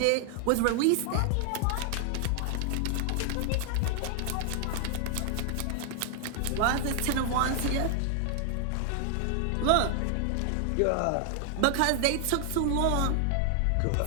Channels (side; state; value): both; different; correlation 0.00